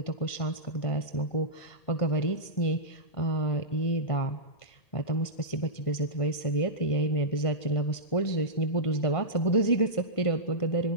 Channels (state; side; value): late; right; 1.5 ms